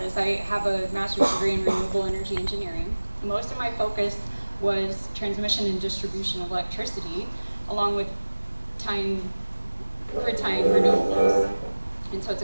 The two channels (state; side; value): inverted; both; correlation -1.00